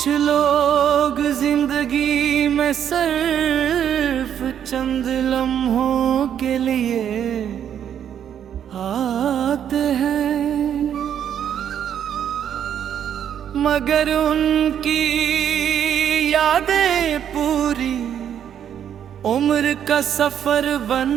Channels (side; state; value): left; quieter; 9.3 dB